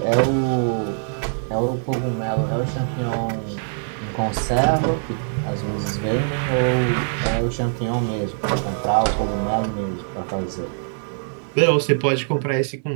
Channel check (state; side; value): silent; left; 59 dB below the other